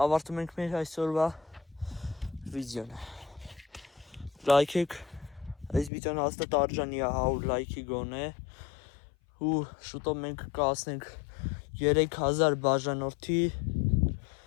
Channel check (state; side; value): drops out; right; at 5.9 s